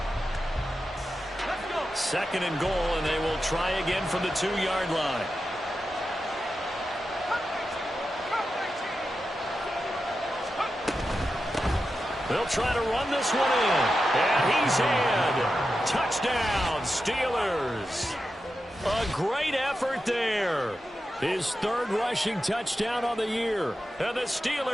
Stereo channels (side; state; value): both; normal; correlation 0.90